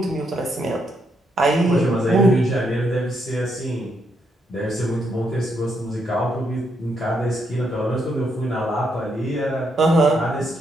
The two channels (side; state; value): both; normal; correlation 0.77